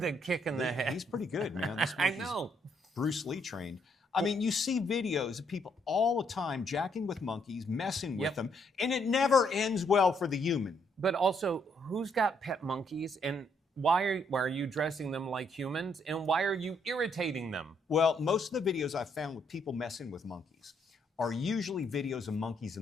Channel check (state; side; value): normal; both; correlation 0.72